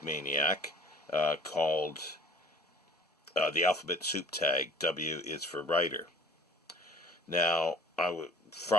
Maniac, called the Alphabet Soup Tag. W is for writer. Now,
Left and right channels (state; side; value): normal; both; correlation 0.48